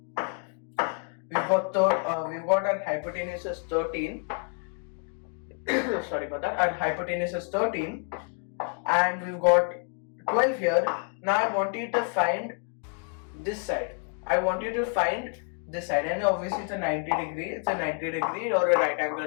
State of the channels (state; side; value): quieter; right; 39.1 dB